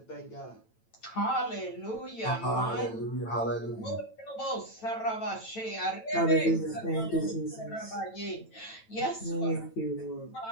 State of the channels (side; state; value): right; late; 9.0 ms